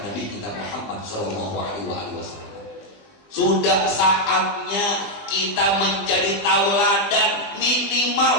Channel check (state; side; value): late; right; 20 ms